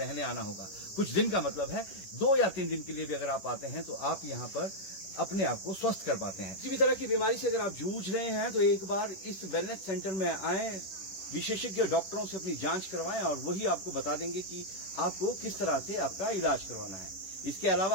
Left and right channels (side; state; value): right; late; 10 ms